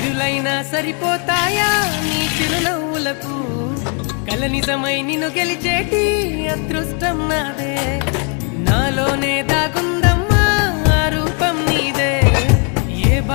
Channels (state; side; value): quieter; right; 38.7 dB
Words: కోట్లైనా సరిపోతాయా నీ చిరునవ్వులకు కల నిజమై నిన్ను గెలిచేటి అదృష్టం నాదే నాలోనే దాగుందమ్మా ఆ రూపం నీదే ఏ